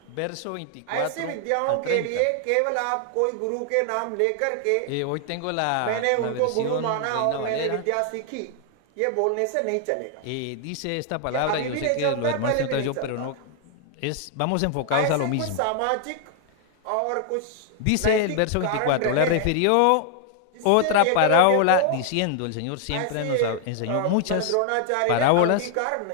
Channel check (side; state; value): both; different; correlation 0.00